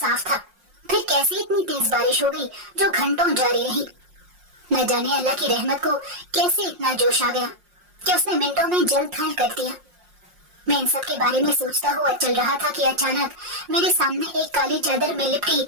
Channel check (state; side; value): late; left; 5.6 ms